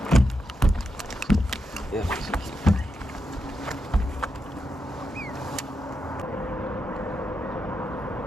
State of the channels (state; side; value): normal; both; correlation 0.85